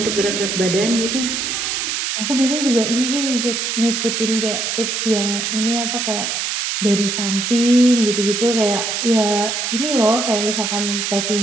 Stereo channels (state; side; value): noise; right; hiss, 1 dB below the sound